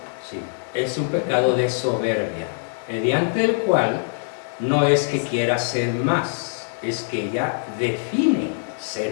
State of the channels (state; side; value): silent; right; digital silence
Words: Sí, es un pecado de soberbia, mediante el cual no es que quiera ser más, es que ella define